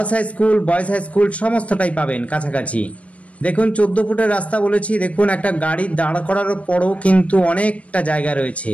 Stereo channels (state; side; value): late; right; 0.064 ms